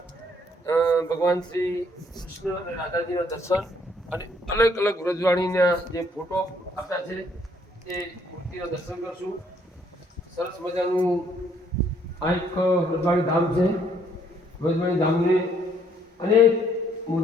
ભગવાન શ્રી કૃષ્ણ અને રાધાજીના દર્શન અને અલગ અલગ વ્રજવાણીના જે ફોટો આપ્યા છે એ મૂર્તિના દર્શન કરશું. સરસ મજાનું આ એક વ્રજવાણી ધામ છે. વ્રજવાણી ધામને અનેક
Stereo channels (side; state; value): both; normal; correlation 0.66